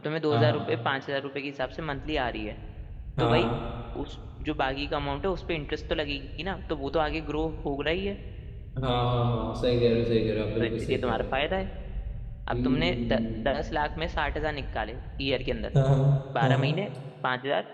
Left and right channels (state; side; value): identical; both; correlation 1.00